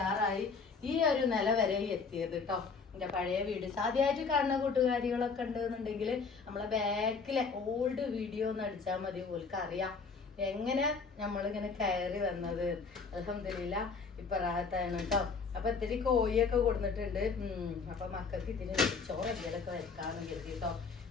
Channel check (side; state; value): right; quieter; 4.9 dB